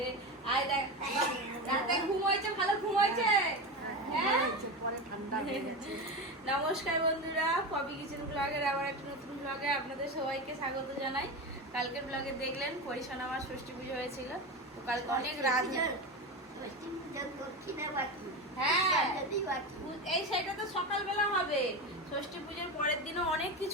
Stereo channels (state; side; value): normal; both; correlation 0.21